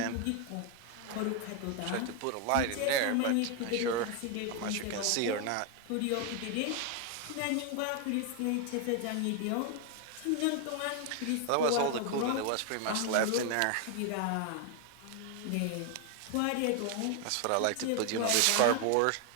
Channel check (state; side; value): different; both; correlation 0.01